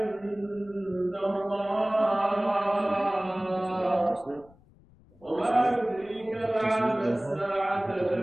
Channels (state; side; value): noise; left; rumble, 27 dB below the sound